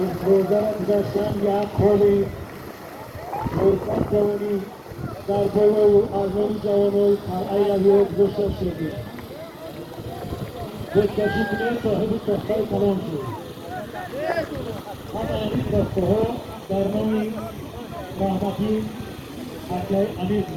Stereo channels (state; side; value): identical; both; correlation 1.00